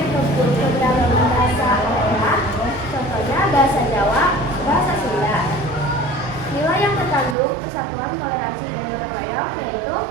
keberagaman bahasa daerah, contohnya bahasa Jawa, bahasa Sunda. Nilai yang terkandung persatuan, toleransi, dan gotong royong yaitu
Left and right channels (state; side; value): drops out; left; at 7.4 s